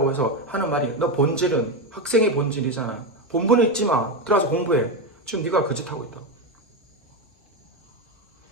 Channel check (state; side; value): normal; both; correlation 0.12